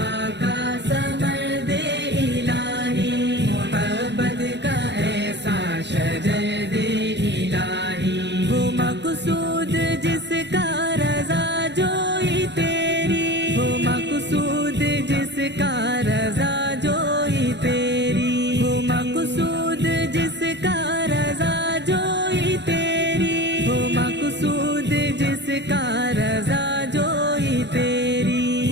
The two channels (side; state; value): left; late; 0.51 ms